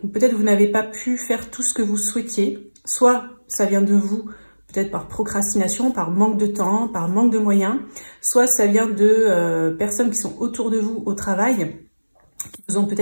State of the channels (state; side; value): inverted; both; correlation -1.00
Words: peut-être vous n'avez pas pu faire tout ce que vous souhaitiez, soit ça vient de vous, peut-être par procrastination, par manque de temps, par manque de moyens, soit ça vient de personnes qui sont autour de vous au travail, qui vous ont